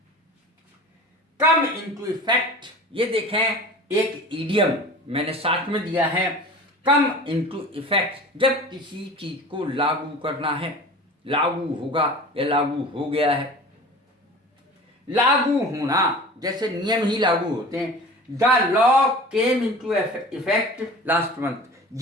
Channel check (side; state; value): both; normal; correlation 0.39